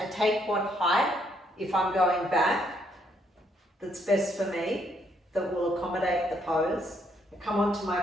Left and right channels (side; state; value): both; normal; correlation 0.71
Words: take what height, if I'm going back, that's best for me, that will accommodate the pose. I come onto my